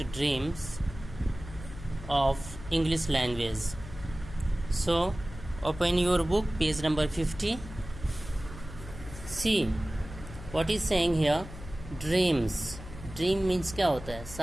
dreams of English language. So open your book, page number 50. See what is saying here. Dreams. Dream means क्या होता है?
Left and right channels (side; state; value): left; noise; hum, 13 dB below the sound